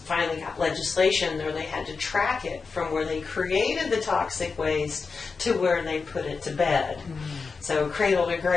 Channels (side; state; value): right; quieter; 4.8 dB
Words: got legislation where they had to track it from where they created the toxic waste to where they put it to bed. So cradle to